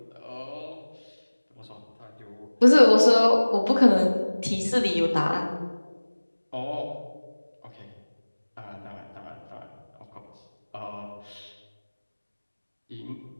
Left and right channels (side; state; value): both; inverted; correlation -1.00